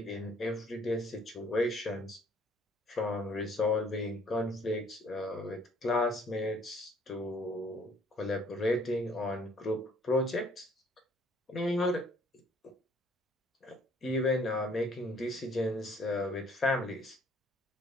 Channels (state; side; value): normal; both; correlation 0.60